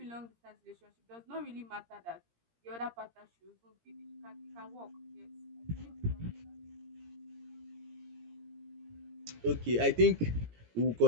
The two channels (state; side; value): late; left; 17 ms